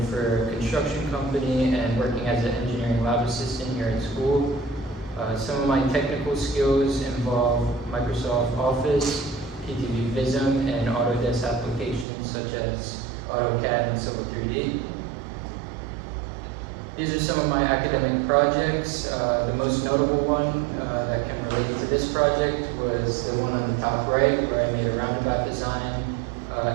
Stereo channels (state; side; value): drops out; left; at 12.1 s